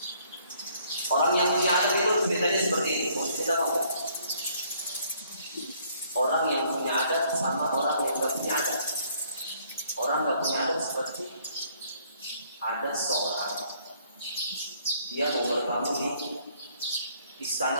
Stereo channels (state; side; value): inverted; both; correlation -0.64